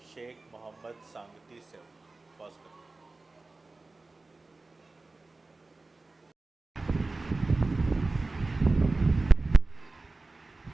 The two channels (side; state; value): left; quieter; 3.4 dB